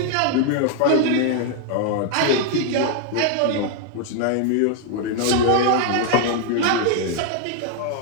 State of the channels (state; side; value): different; both; correlation 0.00